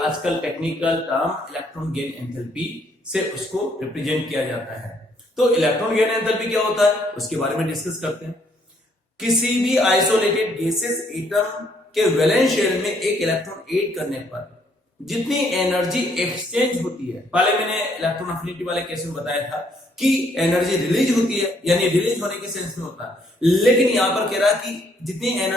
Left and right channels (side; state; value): both; normal; correlation 0.68